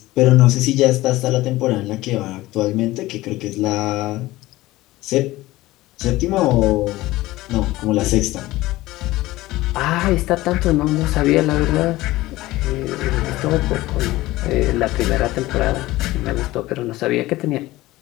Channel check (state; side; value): quieter; right; 18.0 dB